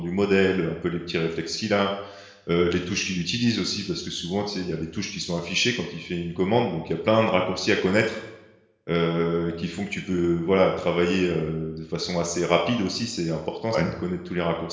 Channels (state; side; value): identical; both; correlation 1.00